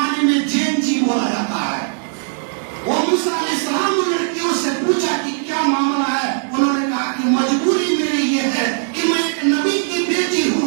میں جین جی بولا جاتا ہے، وہ موسیٰ علیہ السلام نے لڑکیوں سے پوچھا کہ کیا معاملہ ہے. انہوں نے کہا کہ مجبوری میری یہ ہے کہ میں ایک نبی کی بیٹی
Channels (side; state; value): left; silent; 67 dB below the other